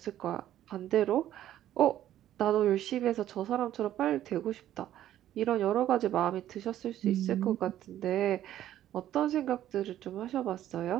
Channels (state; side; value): quieter; left; 12.3 dB